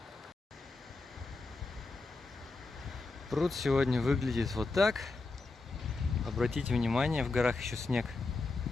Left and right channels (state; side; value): quieter; right; 3.6 dB